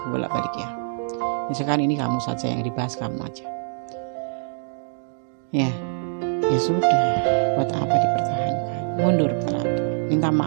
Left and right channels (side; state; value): left; silent; digital silence